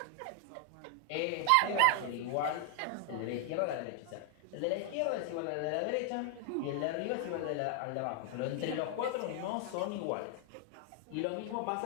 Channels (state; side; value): different; both; correlation 0.00